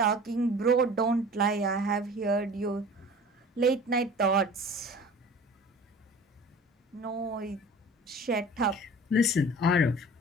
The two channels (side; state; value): both; normal; correlation 0.42